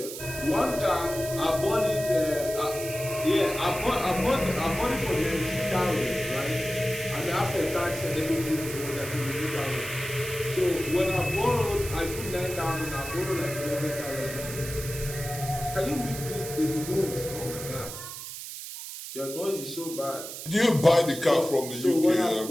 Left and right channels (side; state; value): right; noise; hiss, 9 dB below the sound